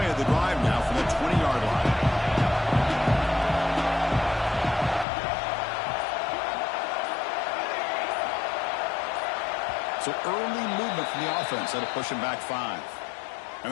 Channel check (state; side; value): drops out; right; at 5.1 s